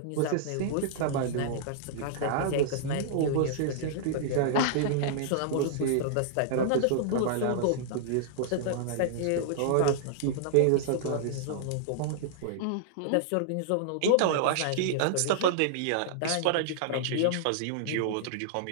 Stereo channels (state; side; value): different; both; correlation -0.01